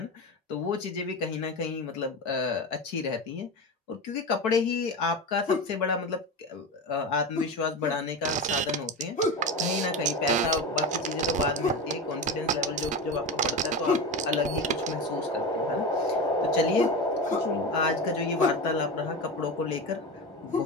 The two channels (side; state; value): both; normal; correlation 0.23